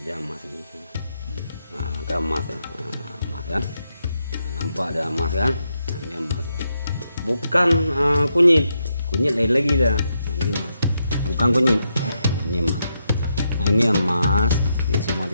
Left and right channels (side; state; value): both; inverted; correlation -0.82